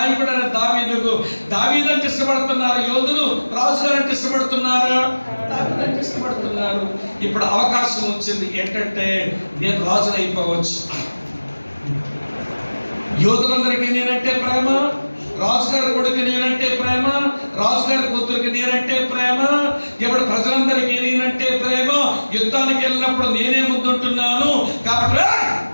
దావీదంటే ఇష్టపడుతున్నారు యోధులు. రాజుగారు అంటే ఇష్టపడుతున్నారా? దావీదంటే ఇష్టపడుతున్నారు. ఇప్పుడు అవకాశం వచ్చింది ఏంటంటే నేను రాజును అయిపోవచ్చు. యోధులందరికీ నేనంటే ప్రేమ, రాజుగారి కొడుకు నేనంటే ప్రేమ, రాజుగారి కూతురికి నేనంటే ప్రేమ, ఇప్పుడు ప్రజలందరికీ నేనంటే ప్రేమ. యుద్ధానికి వెళ్ళినప్పుడు నేనే ముందుంటున్నాను కాబట్టి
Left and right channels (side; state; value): both; inverted; correlation -1.00